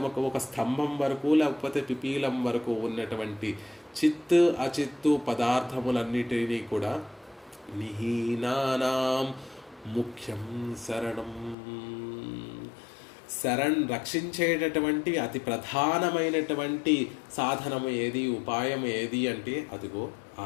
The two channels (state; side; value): drops out; right; at 11.6 s